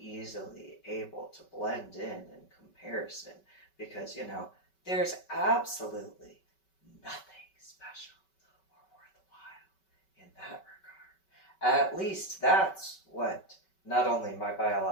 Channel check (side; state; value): right; late; 5.3 ms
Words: able to blend in comparison because, there's absolutely nothing special or worthwhile in that regard. At least that's what not only my